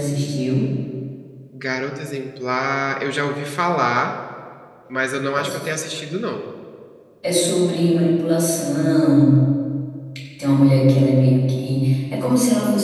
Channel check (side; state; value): both; identical; correlation 1.00